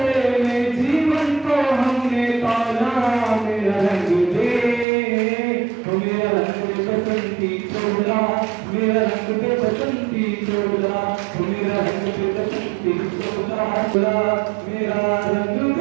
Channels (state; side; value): drops out; left; at 4.9 s